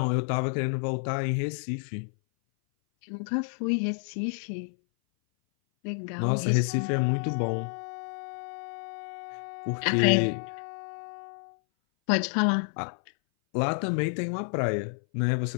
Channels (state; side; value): silent; right; 57 dB below the other